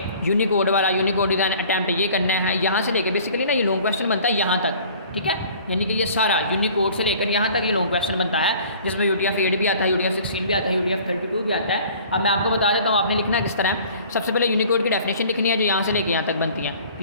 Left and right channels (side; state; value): both; inverted; correlation -0.49